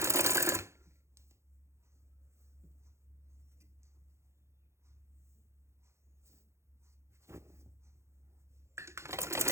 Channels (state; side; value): late; left; 0.13 ms